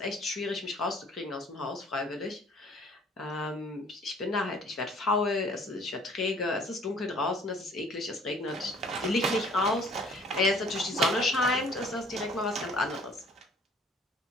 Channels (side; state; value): both; normal; correlation 0.55